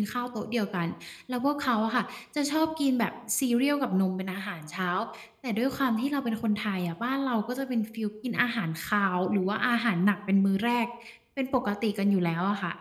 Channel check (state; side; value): identical; both; correlation 1.00